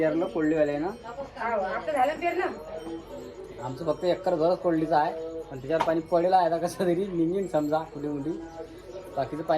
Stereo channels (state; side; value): identical; both; correlation 1.00